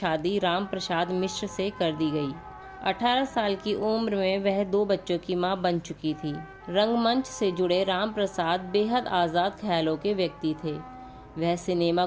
राम प्रसाद मिश्र से कर दी गई। 18 साल की उम्र में वह 2 बच्चों की मां बन चुकी थी। रंगमंच से जुड़े राम प्रसाद बेहद आज़ाद ख्यालों के व्यक्ति थे। वह सिनेमा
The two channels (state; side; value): identical; both; correlation 1.00